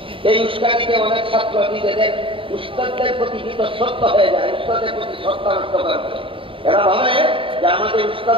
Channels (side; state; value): left; late; 0.25 ms